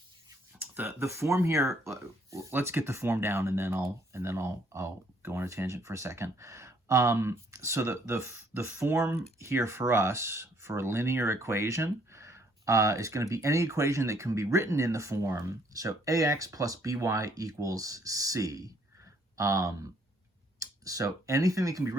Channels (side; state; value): both; normal; correlation 0.65